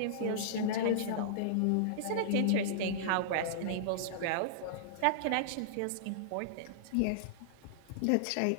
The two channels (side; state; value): both; different; correlation -0.02